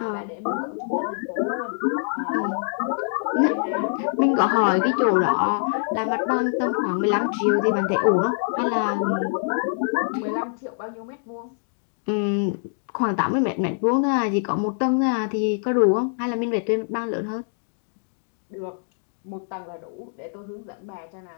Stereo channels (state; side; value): silent; right; digital silence